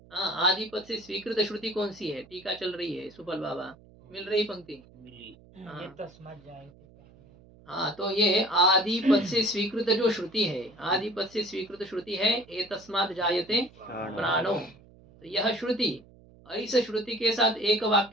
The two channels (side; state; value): right; noise; hum, 25 dB below the sound